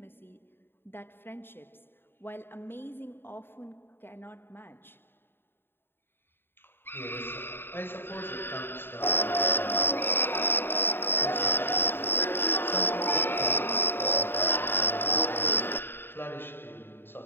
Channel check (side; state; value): right; late; 0.11 ms